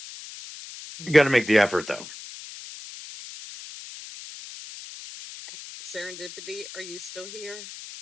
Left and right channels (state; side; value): noise; left; hiss, 13 dB below the sound